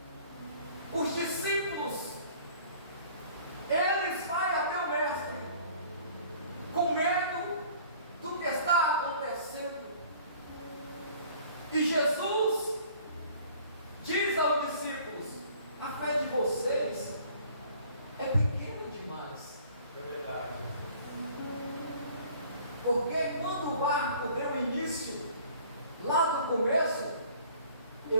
os discípulos, eles vão até o mestre com medo do que está acontecendo. E Jesus diz aos discípulos: a fé de vocês é pequena demais. É verdade. Porque quando o barco deu início, lá no começo,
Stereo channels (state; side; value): inverted; both; correlation -0.52